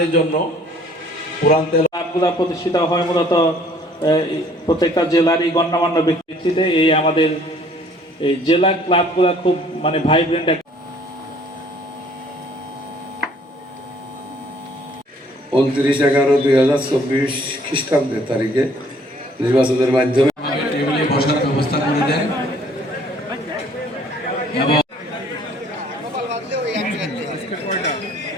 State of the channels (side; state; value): both; normal; correlation 0.58